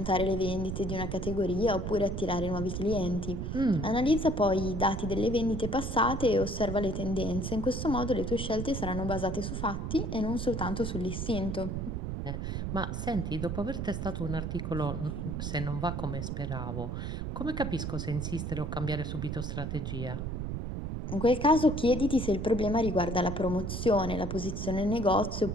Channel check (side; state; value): right; noise; rumble, 3 dB below the sound